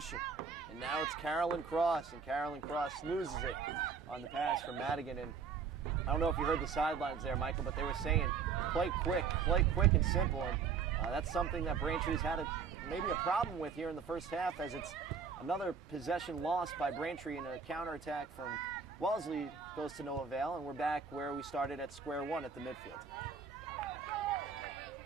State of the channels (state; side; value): quieter; left; 5.9 dB